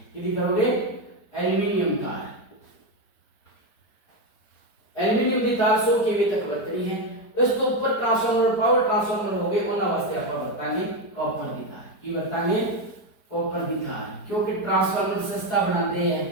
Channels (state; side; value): late; right; 4.6 ms